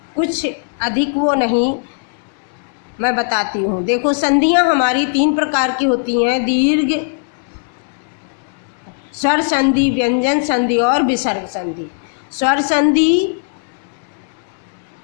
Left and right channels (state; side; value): silent; right; 66 dB below the other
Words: कुछ अधिक वो नहीं, मैं बताती हूँ। देखो, संधियाँ हमारी 3 प्रकार की होती हैं। दीर्घ, स्वर संधि, व्यंजन संधि और विसर्ग संधि। स्वर संधि,